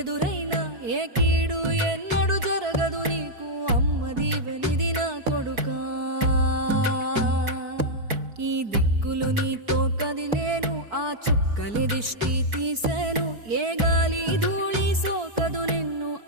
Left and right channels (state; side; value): late; left; 4.6 ms